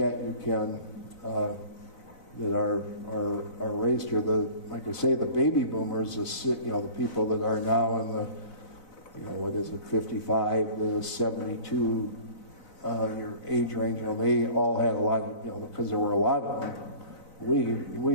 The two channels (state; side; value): late; right; 4.0 ms